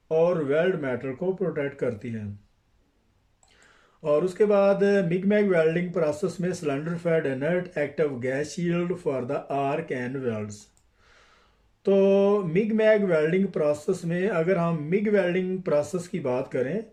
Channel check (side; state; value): both; identical; correlation 1.00